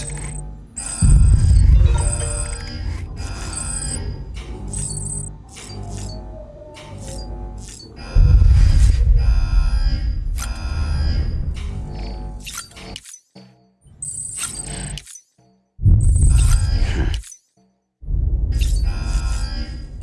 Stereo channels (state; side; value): identical; both; correlation 1.00